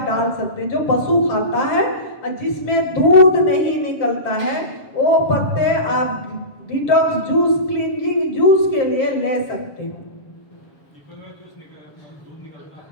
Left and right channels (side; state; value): right; late; 7.5 ms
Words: डाल सकते हैं, जो पशु खाता है, और जिसमें दूध नहीं निकलता है वो पत्ते आप डिटॉक्स जूस, क्लींजिंग जूस के लिए ले सकते हैं।